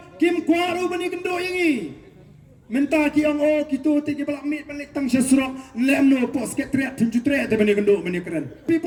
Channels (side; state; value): both; identical; correlation 1.00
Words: kim kwaru bani kendo yangi Menta ki ang o kitu ti ki balak mit balik tang sesrok lemno pos Secretariat tunjutre te bani kendo bani keren